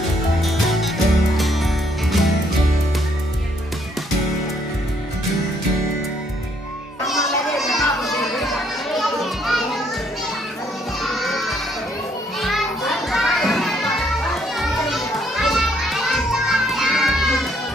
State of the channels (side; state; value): both; normal; correlation 0.69